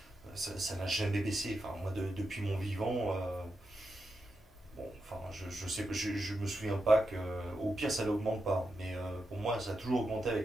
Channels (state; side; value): normal; both; correlation 0.87